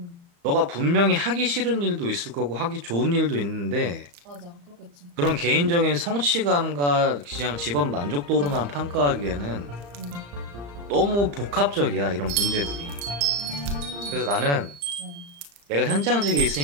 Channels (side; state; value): left; late; 35 ms